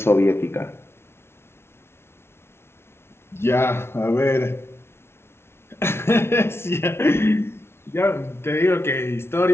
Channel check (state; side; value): late; right; 0.12 ms